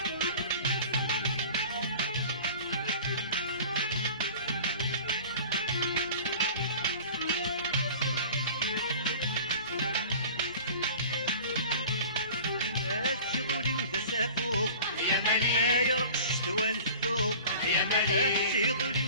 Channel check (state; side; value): inverted; both; correlation -0.41